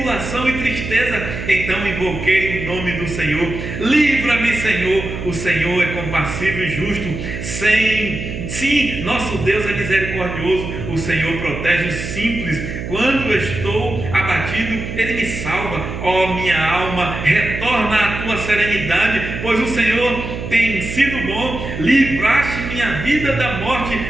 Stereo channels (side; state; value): right; noise; hum, 7 dB below the sound